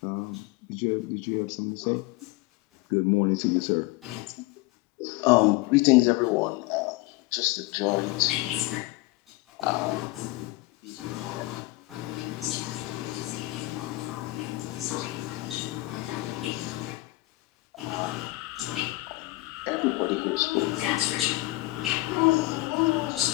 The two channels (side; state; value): right; quieter; 20.7 dB